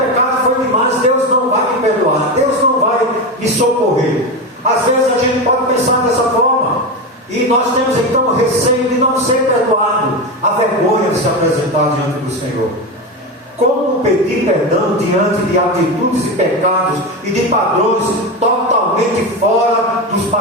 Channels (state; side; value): normal; both; correlation 0.18